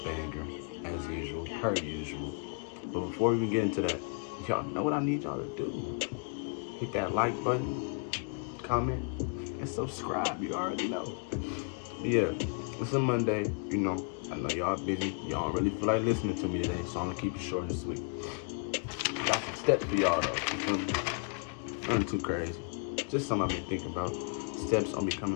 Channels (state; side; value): quieter; right; 37.0 dB